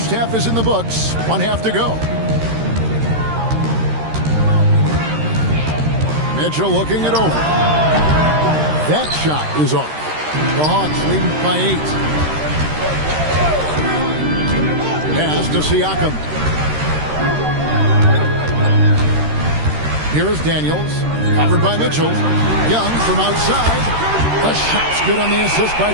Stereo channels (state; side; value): late; left; 13 ms